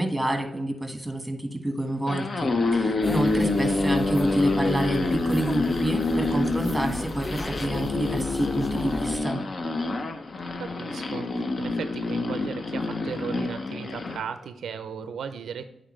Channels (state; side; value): normal; both; correlation 0.89